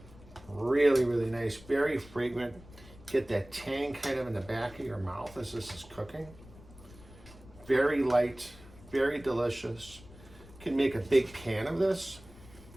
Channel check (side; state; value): left; noise; rumble, 21 dB below the sound